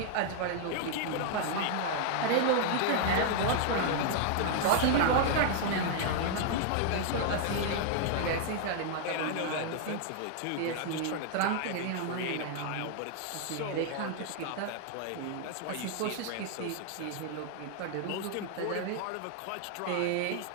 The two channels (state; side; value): different; both; correlation 0.00